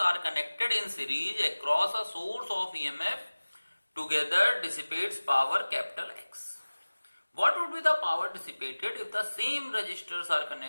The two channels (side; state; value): both; inverted; correlation -1.00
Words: are connected in series across a source of EMF together dissipates power capital X। What would be the power dissipated if the same resistors are